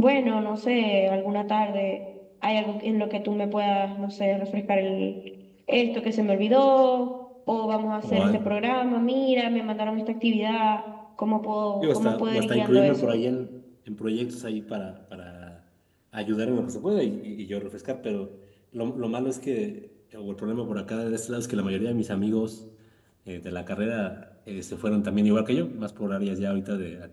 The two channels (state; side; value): identical; both; correlation 1.00